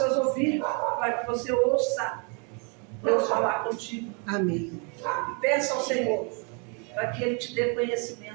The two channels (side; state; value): left; quieter; 35.8 dB